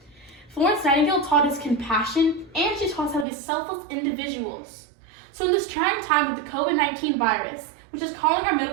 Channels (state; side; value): drops out; left; at 3.2 s